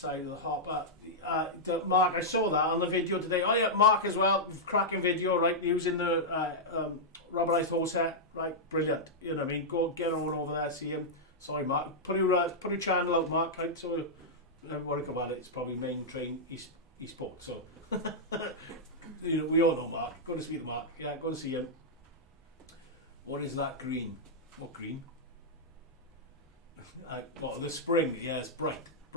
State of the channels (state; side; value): normal; both; correlation -0.07